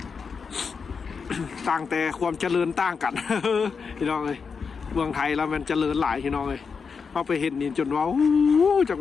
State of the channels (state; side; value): quieter; right; 5.6 dB